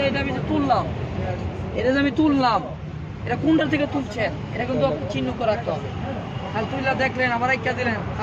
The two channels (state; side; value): identical; both; correlation 1.00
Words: এটা আমি যে তুললাম, এটা কোনটা থেকে তুলছেন, এটা কিন্তু চিহ্ন করে রাখতে হবে। তাহলে তুললা দেখলেন, আবার একটা দিলেন,